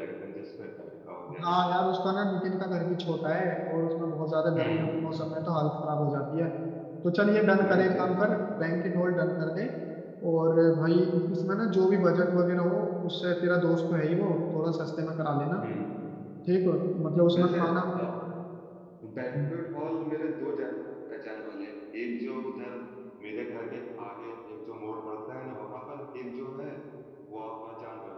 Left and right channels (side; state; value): both; identical; correlation 1.00